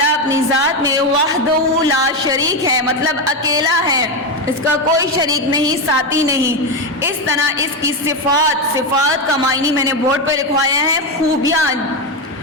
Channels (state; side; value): normal; both; correlation 0.11